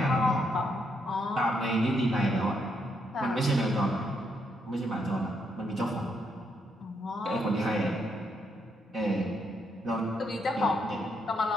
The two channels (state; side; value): normal; both; correlation 0.77